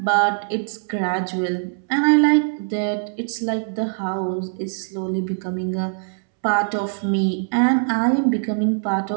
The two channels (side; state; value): left; silent; 64 dB below the other